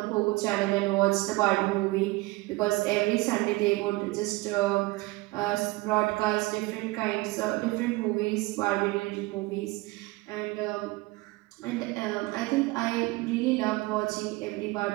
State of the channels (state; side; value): quieter; left; 21.7 dB